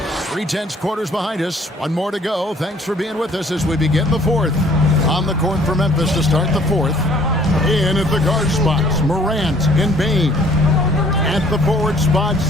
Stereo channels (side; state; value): both; normal; correlation 0.58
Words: 3/10 quarters behind us. 1 more to go. Thanks for being with us as we begin the 4th. On the court for Memphis to start the 4th. In at the guard spots, Morant and Bain. At the forward